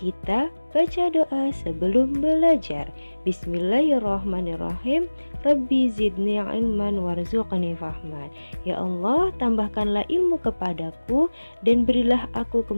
baca doa sebelum belajar. Bismillahirrahmanirrahim. Rabbi zidni ilman warzuqni fahman. Ya Allah, tambahkanlah ilmu kepadaku dan berilah aku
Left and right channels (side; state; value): both; inverted; correlation -1.00